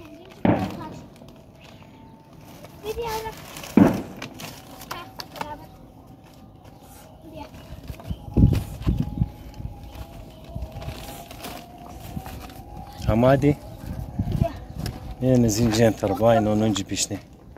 Hamadi? Yine zinciren tarafı aynı 10. pişti.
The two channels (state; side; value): identical; both; correlation 1.00